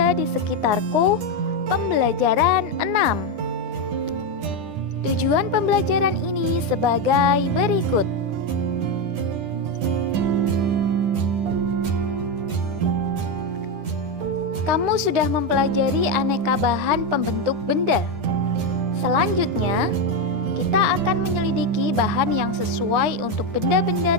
di sekitarku, pembelajaran 6. Tujuan pembelajaran ini sebagai berikut. Kamu sudah mempelajari aneka bahan pembentuk benda. Selanjutnya, kita akan menyelidiki bahan yang sesuai untuk benda-benda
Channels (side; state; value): left; late; 10 ms